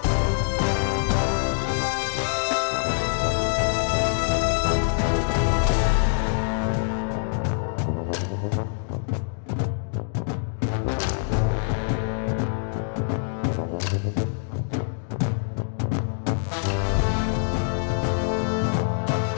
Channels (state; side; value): silent; right; digital silence